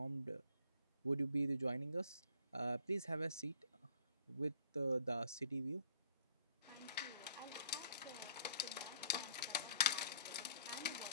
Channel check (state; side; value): inverted; both; correlation -0.59